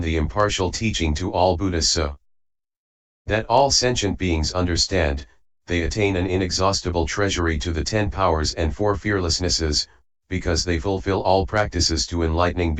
the impartial teaching to all Buddhas so that all sentient beings understand. They attain an inexhaustible treasury to the 10 powers and 4 fearlessnesses, because they fulfill all practices to enlightening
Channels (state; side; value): identical; both; correlation 1.00